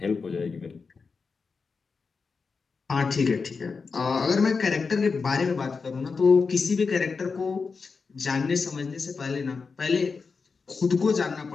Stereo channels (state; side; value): quieter; right; 4.9 dB